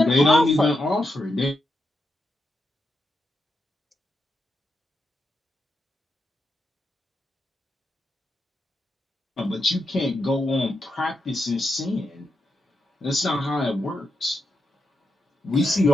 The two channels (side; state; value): both; normal; correlation 0.85